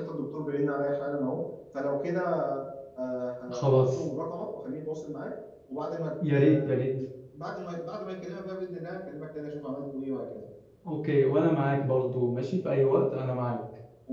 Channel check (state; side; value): identical; both; correlation 1.00